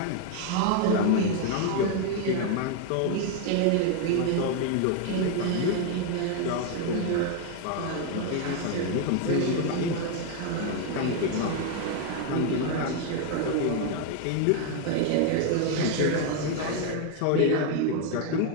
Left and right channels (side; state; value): both; different; correlation 0.01